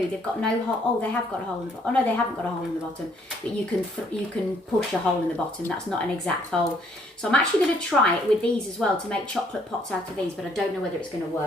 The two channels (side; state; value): both; normal; correlation 0.65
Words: They've got no hole. Oh, they have got a hole in the bottom. Oh no, they haven't got a hole in the bottom, but you can push a hole in the bottom. That's not an exact hole. So I'm actually going to try it with these as well to make chocolate pots out of these, but I don't know whether it's going to